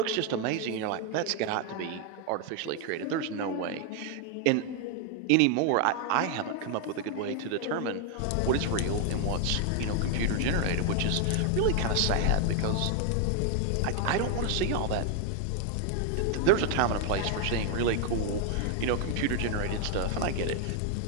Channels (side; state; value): both; different; correlation 0.01